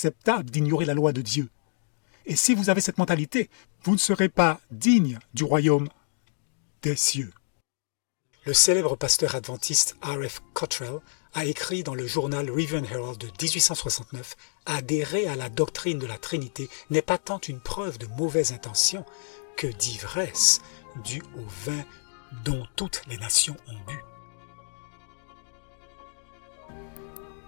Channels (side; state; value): right; silent; digital silence